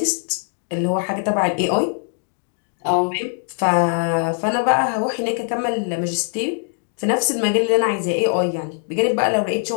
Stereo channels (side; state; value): right; silent; 57 dB below the other